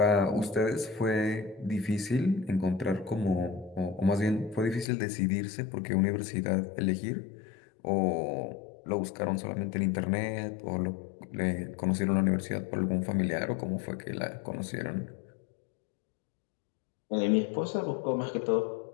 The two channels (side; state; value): right; drops out; at 4.9 s